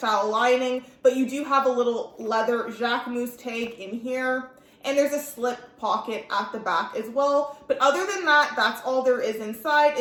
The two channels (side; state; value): both; identical; correlation 1.00